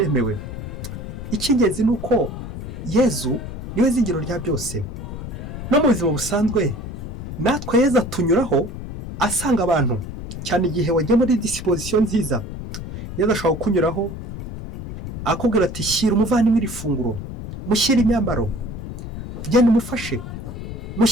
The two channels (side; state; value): left; noise; rumble, 8 dB below the sound